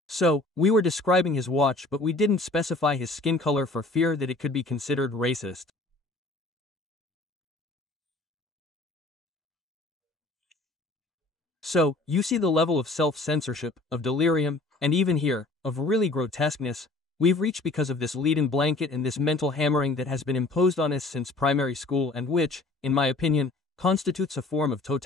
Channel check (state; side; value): quieter; right; 3.0 dB